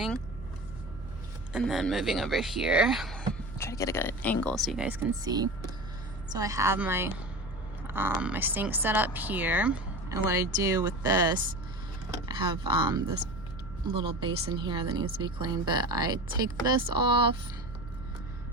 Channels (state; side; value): noise; right; hum, 15 dB below the sound